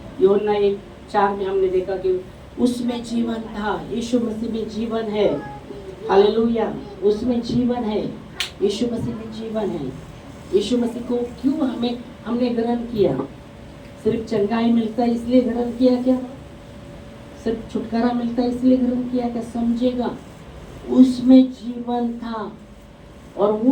यूहन्ना 1:4 में हमने देखा कि उसमें जीवन था, यीशु मसीह में जीवन है। हालेलुया, उसमें जीवन है, यीशु मसीह में जीवन है। यीशु मसीह को क्यों हमने ग्रहण किया? सिर्फ चंगाई मिलता है इसलिए ग्रहण किया क्या? सिर्फ छुटकारा मिलता है इसलिए ग्रहण किया क्या? समझेगा, उसमें जीवन था और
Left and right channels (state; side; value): identical; both; correlation 1.00